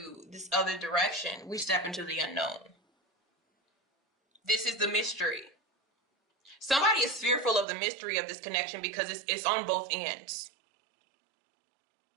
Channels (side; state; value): left; drops out; at 7.7 s